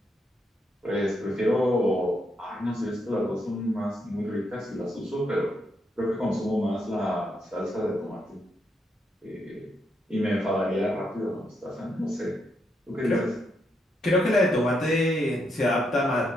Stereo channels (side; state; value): both; normal; correlation 0.79